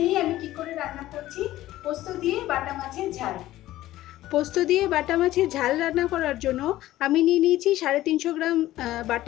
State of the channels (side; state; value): right; quieter; 15.2 dB